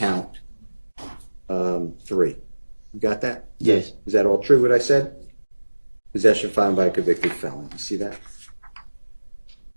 3. You got that? Yes. Is that all true, what I said? Possession of firearm by a convicted felon. You see that?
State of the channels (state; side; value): inverted; both; correlation -1.00